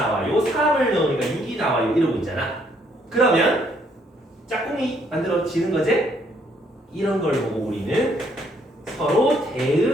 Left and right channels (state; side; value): normal; both; correlation 0.68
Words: 3을 넣으니까 6이 나와요. 이러고 있잖아. 그러면 짝꿍이 만들어지는 거지? 이런 걸 보고 우리는 서로